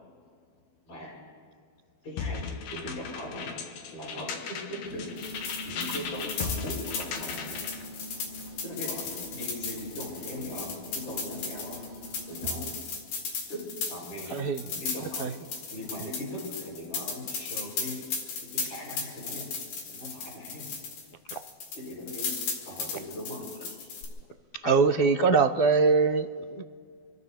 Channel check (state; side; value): late; right; 12 ms